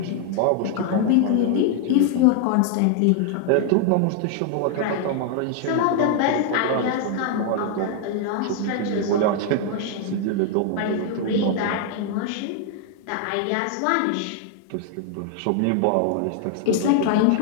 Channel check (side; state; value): both; different; correlation 0.00